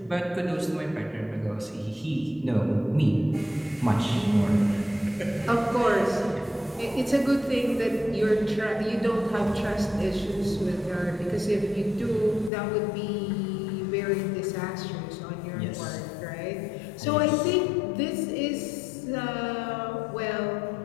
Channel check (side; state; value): right; drops out; at 12.5 s